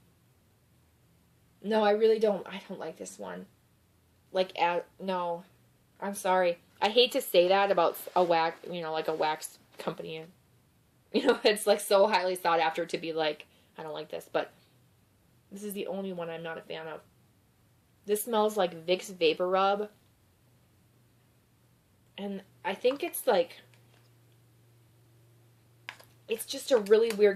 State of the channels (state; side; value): identical; both; correlation 1.00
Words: No, I really don't. I don't like this one. Like, no. I'm sorry. I hate to say that about a wax, like a wax company. It's like so highly sought after to be like, I don't like this, but this is the only one I'm not a fan of. This smells like Vicks Vapor Rub. And I think it's like, it's just a really